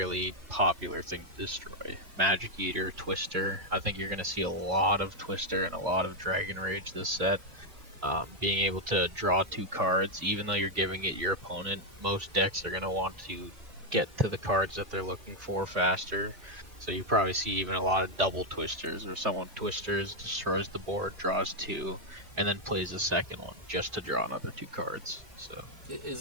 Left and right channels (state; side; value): late; left; 2.8 ms